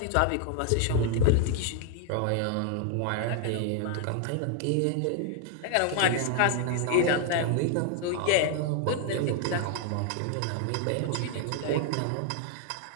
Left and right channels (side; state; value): both; different; correlation 0.00